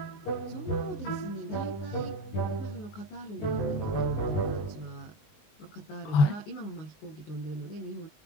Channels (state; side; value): late; right; 20 ms